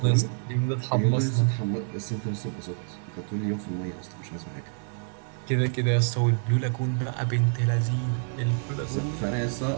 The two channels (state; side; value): silent; left; 58 dB below the other